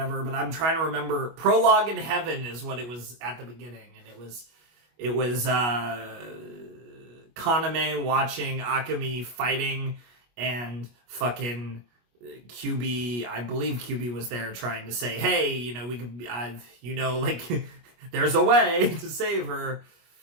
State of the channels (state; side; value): late; left; 25 ms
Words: but I'm trying to remember. Prologue in Heaven is what it was at the beginning, and it was Kaname watching Akemi fighting, and fucking QB, I believe QB was there trying to say, hey, we could, like, there's a way to save her.